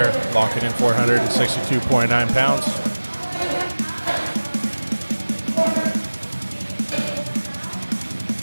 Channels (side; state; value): both; inverted; correlation -1.00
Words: Locking in 462.9 pounds.